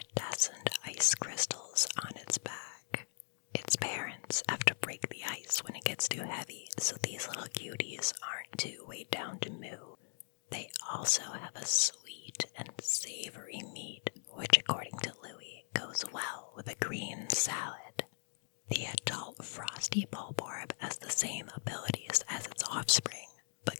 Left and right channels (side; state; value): right; silent; digital silence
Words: ice crystals on its back. Its parents have to break the ice when it gets too heavy, so these little cuties aren't too weighed down to moo. They also have a sweet and savory meat, which according to Louis goes well with a green salad. The adult frosty bulborb has the same abilities as its offspring, but